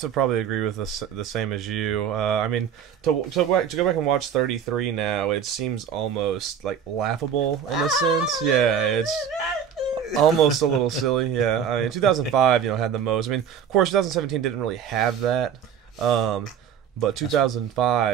probably agree with the same as you. I mean, to go back and watch 33 now, it seems almost like laughable in a sense. Yeah, it's almost a little silly. Yeah, I mean, 2005, had the most. I mean, of course, 2017 didn't really have that, but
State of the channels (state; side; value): quieter; left; 8.0 dB